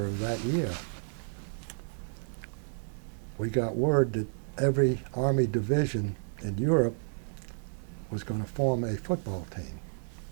of that year, we got word that every Army division in Europe was going to form a football team.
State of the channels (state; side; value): silent; left; digital silence